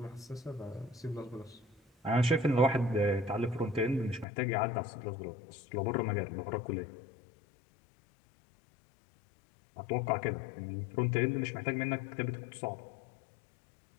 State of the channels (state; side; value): drops out; right; at 4.2 s